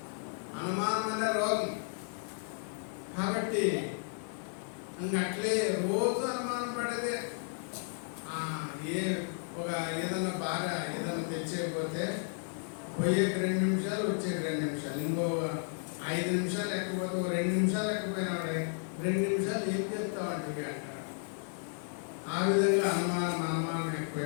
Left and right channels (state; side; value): silent; right; 56 dB below the other